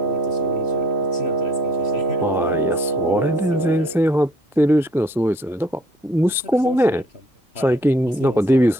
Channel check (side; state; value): both; normal; correlation 0.60